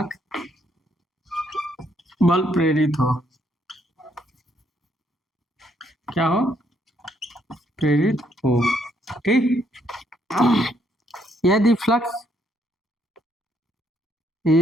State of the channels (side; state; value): both; normal; correlation 0.72